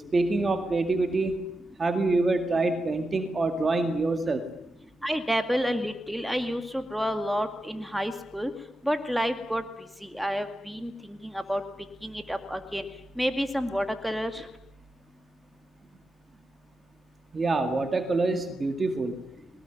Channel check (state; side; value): normal; both; correlation 0.89